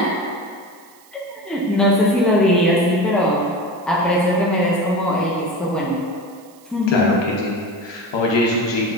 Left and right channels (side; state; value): right; noise; hiss, 27 dB below the sound